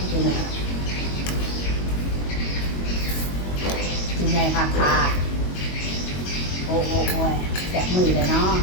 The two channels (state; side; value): late; right; 22 ms